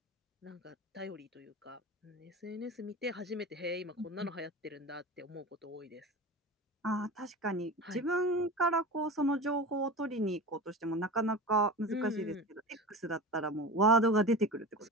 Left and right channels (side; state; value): both; normal; correlation 0.31